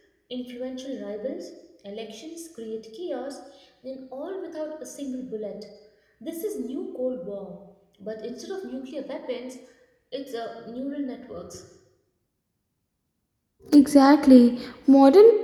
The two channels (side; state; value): both; identical; correlation 1.00